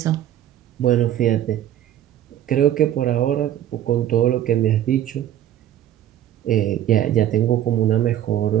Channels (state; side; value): quieter; left; 11.7 dB